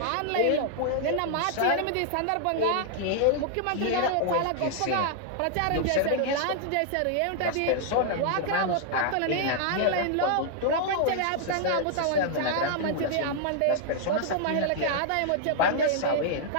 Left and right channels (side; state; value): both; different; correlation -0.01